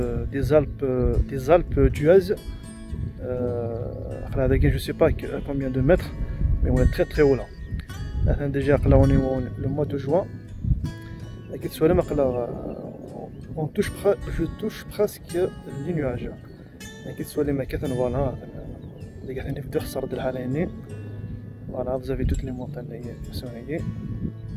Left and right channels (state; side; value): identical; both; correlation 1.00